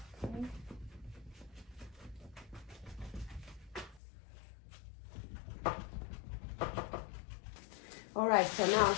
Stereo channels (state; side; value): drops out; right; at 4.0 s